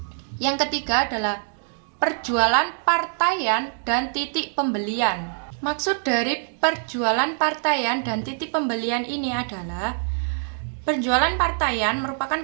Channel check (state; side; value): silent; left; digital silence